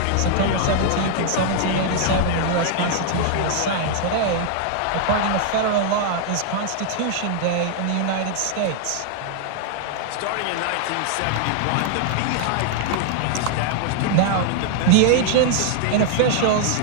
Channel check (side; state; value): both; different; correlation 0.00